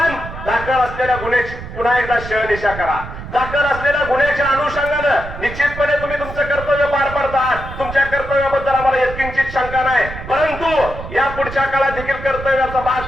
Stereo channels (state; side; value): noise; right; rumble, 11 dB below the sound